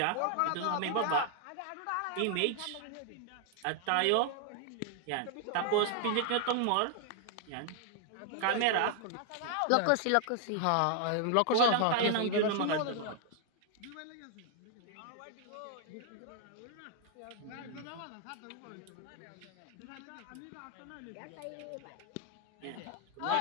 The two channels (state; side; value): different; both; correlation 0.00